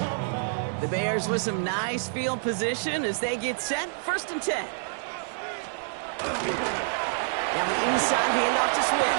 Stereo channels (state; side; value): silent; left; digital silence